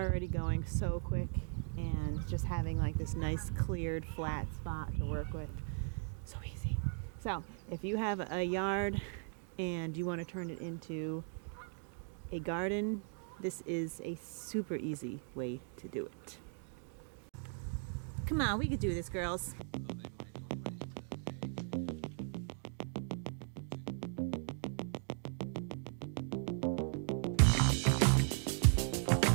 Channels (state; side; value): silent; left; 52 dB below the other